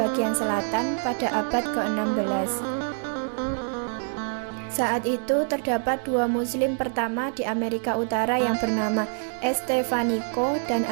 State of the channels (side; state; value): left; silent; digital silence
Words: selatan pada abad ke-16. Saat itu terdapat dua muslim pertama di Amerika Utara yang bernama Estevanico dan